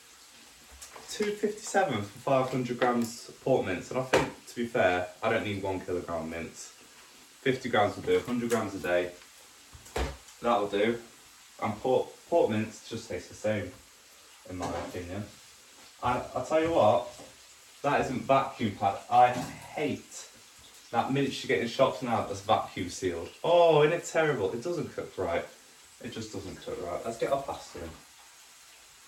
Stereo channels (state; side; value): identical; both; correlation 1.00